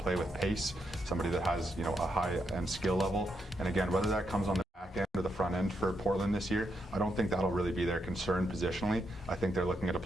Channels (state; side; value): normal; both; correlation 0.81